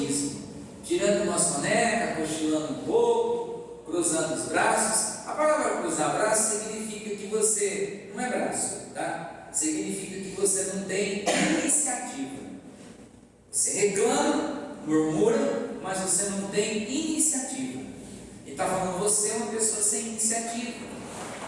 Tirando uma soneca, cochilando um pouco, cruzando os braços. A palavra cruzar braços significa que você, não é braço, tá? Significa que você não tem iniciativa. Você reclama, murmura, mas você não tem iniciativa. Ele está falando: você é uma pessoa sem iniciativa.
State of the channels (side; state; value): both; identical; correlation 1.00